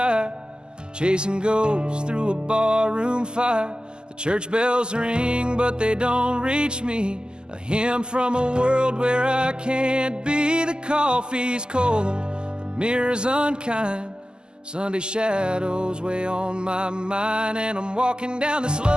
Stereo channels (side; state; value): left; late; 0.046 ms